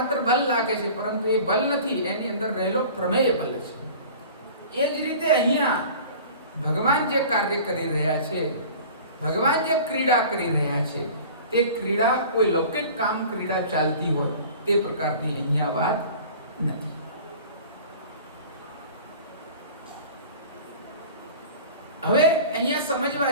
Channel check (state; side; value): inverted; both; correlation -0.42